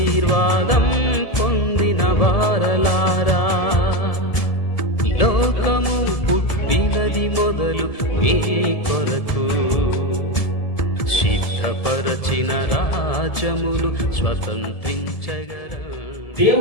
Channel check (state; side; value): late; right; 1.7 ms